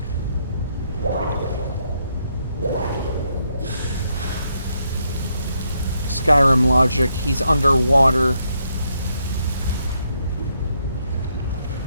Skyrim logic, he's underwater.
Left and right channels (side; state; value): both; inverted; correlation -0.77